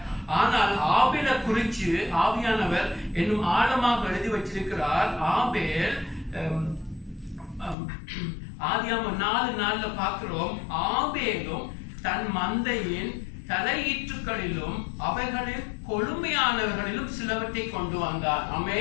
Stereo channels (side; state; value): right; drops out; at 7.8 s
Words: ஆனால் ஆபேலை குறித்து ஆவியானவர் என்னும் ஆழமாக எழுதி வச்சிருக்கிறார். ஆபேல் ஆதியாகமம் 4:4 பார்க்கிறோம், ஆபேலும் தன் மந்தையின் தலையீற்றுகளிலும் அவைகளில் கொழுமையானவர்களிலும் சிலவற்றை கொண்டு வந்தார்.